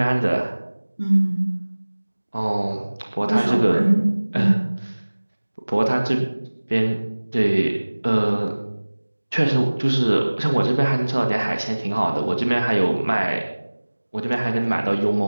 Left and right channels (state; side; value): inverted; both; correlation -1.00